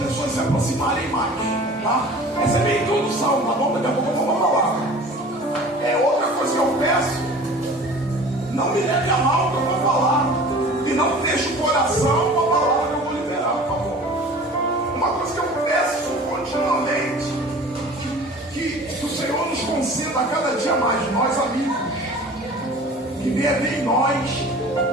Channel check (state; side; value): normal; both; correlation 0.43